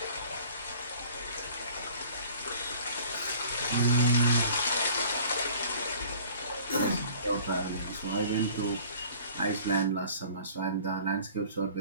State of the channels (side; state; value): both; inverted; correlation -0.50